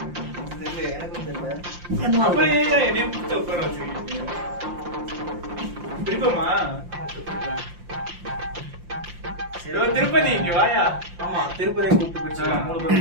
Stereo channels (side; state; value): left; late; 5.7 ms